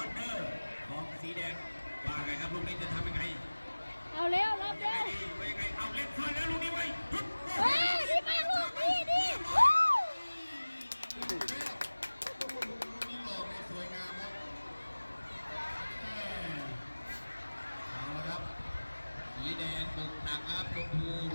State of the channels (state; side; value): inverted; both; correlation -1.00